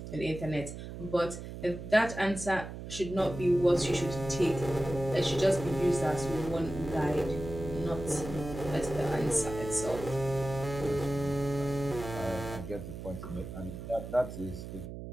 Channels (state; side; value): noise; right; hum, 10 dB below the sound